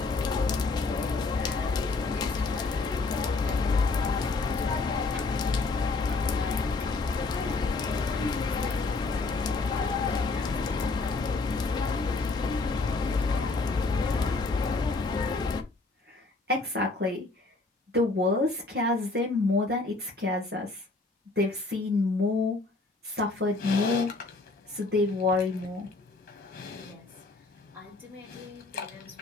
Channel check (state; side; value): quieter; right; 3.6 dB